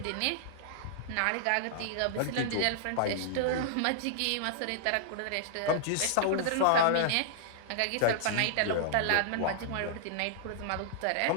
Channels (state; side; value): different; both; correlation -0.01